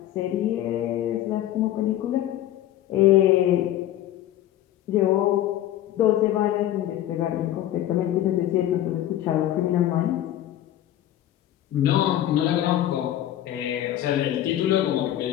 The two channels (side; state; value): right; quieter; 12.8 dB